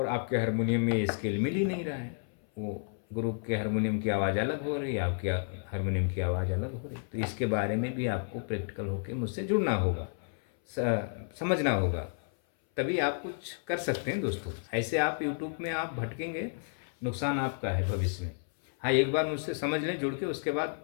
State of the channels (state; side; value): silent; right; 57 dB below the other